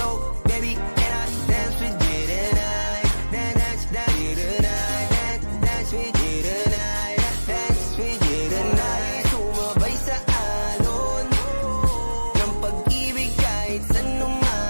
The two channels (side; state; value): both; inverted; correlation -1.00